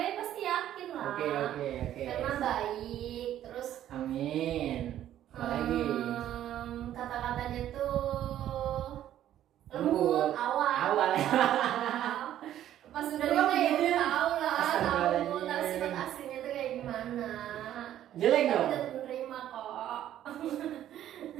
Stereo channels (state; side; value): quieter; left; 11.8 dB